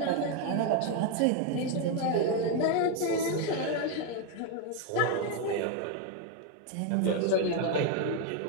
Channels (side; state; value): both; different; correlation 0.02